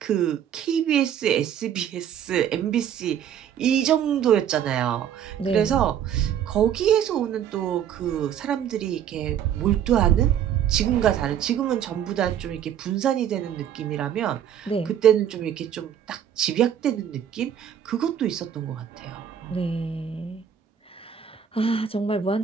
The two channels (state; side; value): quieter; left; 9.3 dB